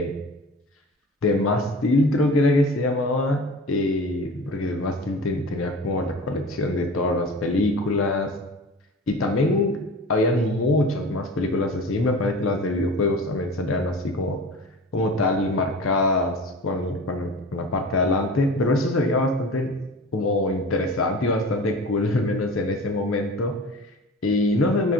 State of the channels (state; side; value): normal; both; correlation 0.37